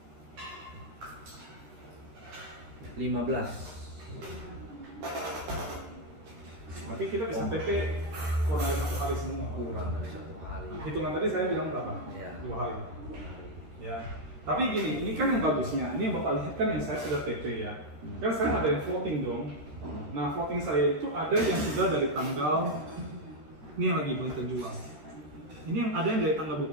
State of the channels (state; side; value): late; left; 13 ms